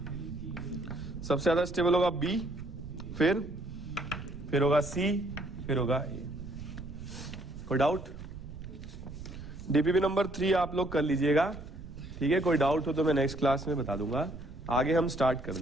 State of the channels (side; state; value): right; noise; rumble, 13 dB below the sound